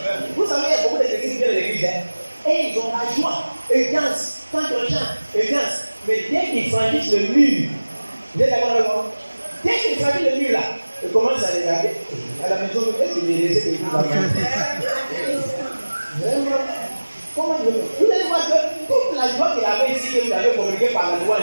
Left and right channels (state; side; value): inverted; both; correlation -1.00